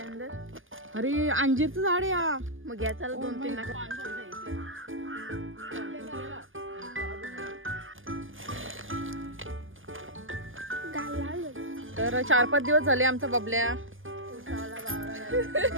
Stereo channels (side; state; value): left; late; 0.58 ms